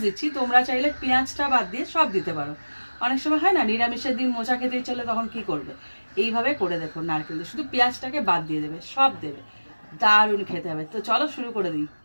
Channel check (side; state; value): both; inverted; correlation -1.00